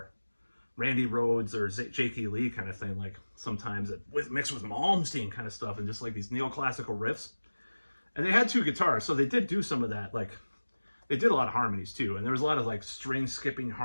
Randy Rhoads or J.K. Lee kind of thing. Like sometimes mixed with Malmsteen kind of stuff, and just like these neoclassical riffs. And they had 2 guitars, so they did do some of that. Like, they did a lot of harmonies too, and there was a lot of like string skipping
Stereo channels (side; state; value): both; inverted; correlation -1.00